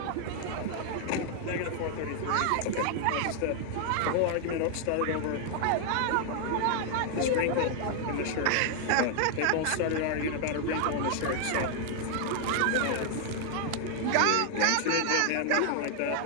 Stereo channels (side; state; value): both; different; correlation 0.00